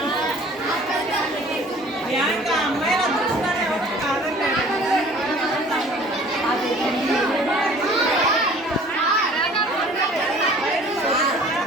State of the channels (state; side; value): normal; both; correlation 0.50